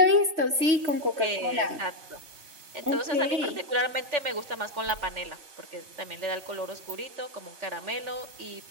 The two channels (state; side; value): late; left; 3.4 ms